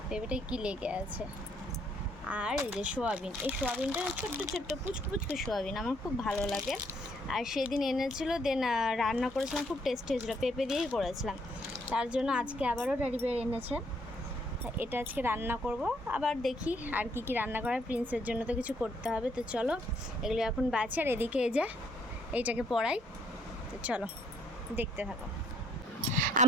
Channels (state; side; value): normal; both; correlation 0.68